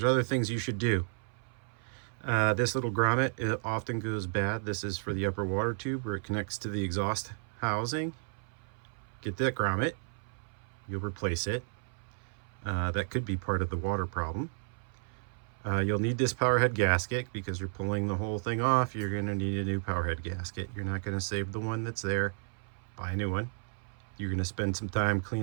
other things you should do. This little grommet, it often goes bad. This is for the upper water tube where it connects to the exhaust housing. Get that grommet. You'll replace it. That could be part of the water problem. You'll need this power head gasket because you're pulling the whole thing off. You're going to need a new power head gasket. You're not going to save the one that's there. Buy a new one. You're going to spend some time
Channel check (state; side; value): silent; left; 56 dB below the other